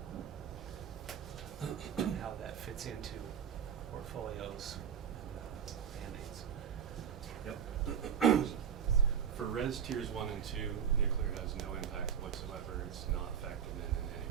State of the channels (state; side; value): quieter; left; 8.4 dB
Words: and how that fits into portfolios and mandates. Yep. For res tiers 1 and 2, nuclear has no impact whatsoever. It's not factored in any